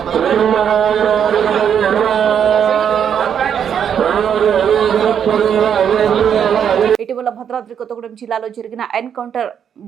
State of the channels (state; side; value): quieter; left; 8.3 dB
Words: ఇటీవల భద్రాద్రి కొత్తగూడెం జిల్లాలో జరిగిన ఎన్కౌంటర్